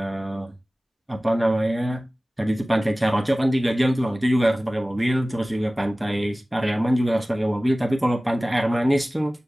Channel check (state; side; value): normal; both; correlation 0.98